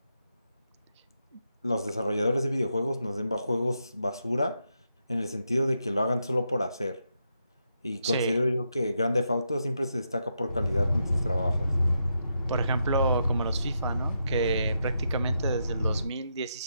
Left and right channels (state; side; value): inverted; both; correlation -0.82